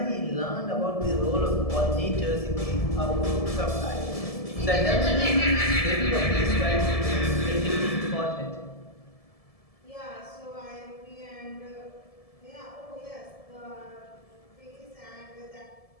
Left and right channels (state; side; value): late; right; 1.7 ms